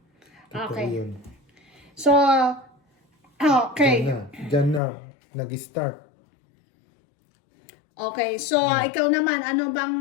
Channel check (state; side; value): drops out; right; at 4.8 s